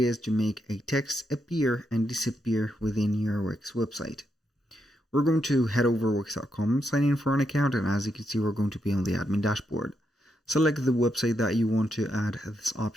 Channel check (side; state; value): both; normal; correlation 0.81